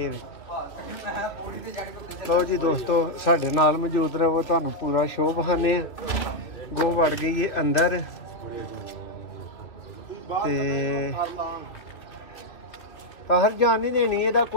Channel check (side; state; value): right; late; 2.8 ms